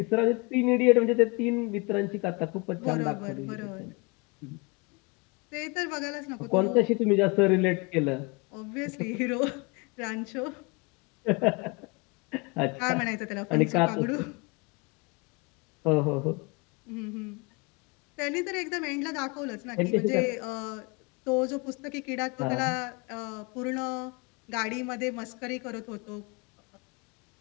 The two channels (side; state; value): right; quieter; 28.7 dB